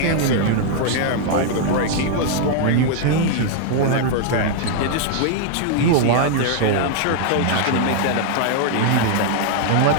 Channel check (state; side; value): different; both; correlation 0.00